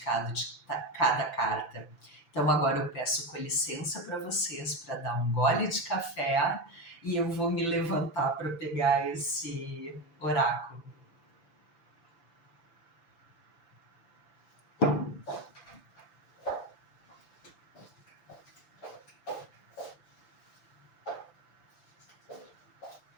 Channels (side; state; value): right; late; 5.9 ms